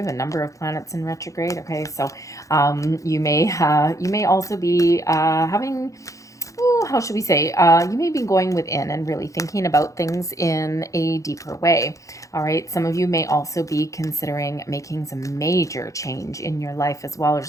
a number of planets in retrograde. Okay, so you may also be having, how should we say, you may be going within and really thinking about things in a deeper way. All right, some of you may also be considering making some major change in your life as well.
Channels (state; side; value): late; right; 0.16 ms